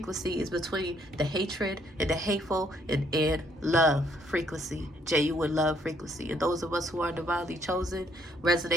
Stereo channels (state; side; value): normal; both; correlation 0.69